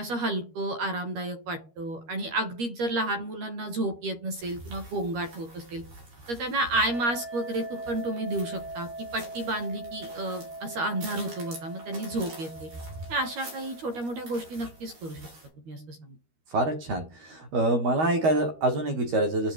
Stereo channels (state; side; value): late; left; 13 ms